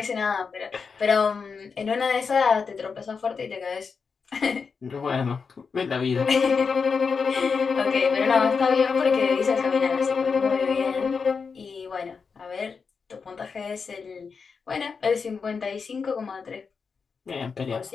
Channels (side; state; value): right; quieter; 5.4 dB